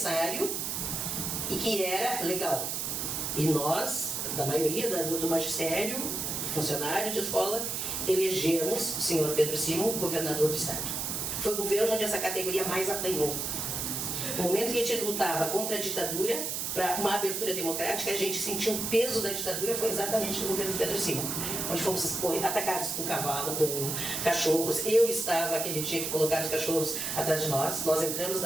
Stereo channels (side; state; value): right; noise; hiss, 2 dB below the sound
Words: e que era legal. E nós, da maioria do magistério, funcionários de escola, elegemos o senhor Pedro Simon governador do estado. Foi o governo onde essa categoria mais apanhou. No momento que a gente lutava contra a ditadura, para uma abertura democrática, a gente sentiu o peso da ditadura, foi exatamente no governo Pedro Simon, onde fomos atacados com cavalo, com cachorros. Eu estava aquele dia que colocaram os cachorros atrás de nós. Nós entramos